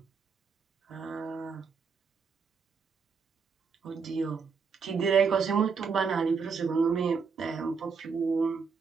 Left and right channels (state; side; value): quieter; left; 5.5 dB